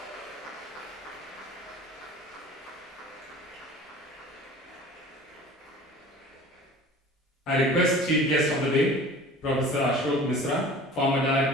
I request Chief Guest of the Day, Professor Ashok Misra, former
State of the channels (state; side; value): normal; both; correlation 0.42